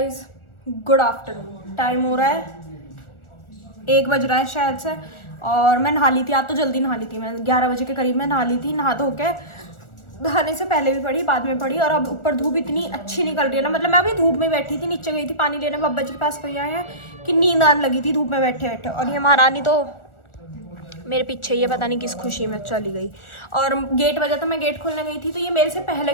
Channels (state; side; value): late; right; 1.4 ms